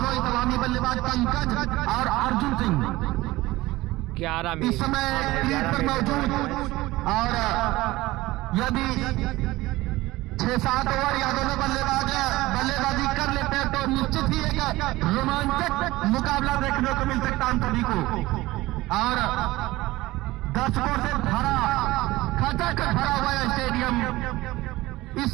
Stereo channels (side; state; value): left; quieter; 18.7 dB